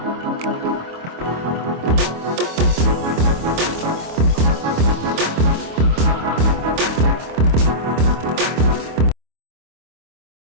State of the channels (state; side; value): late; left; 25 ms